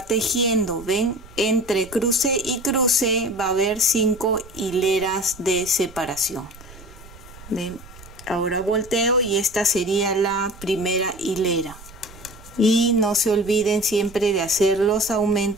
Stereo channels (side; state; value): right; noise; rumble, 19 dB below the sound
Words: tejiendo. ¿Ven? Entre cruce y cruce va a haber 5 hileras de separación. ¿Ven? Ahora volteo y esta sería la primera hilera. Y no se olviden siempre de hacer los